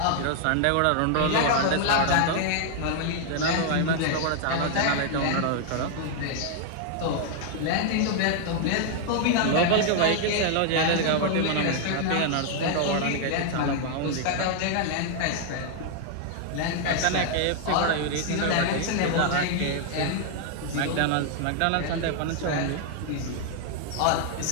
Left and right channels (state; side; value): different; both; correlation 0.00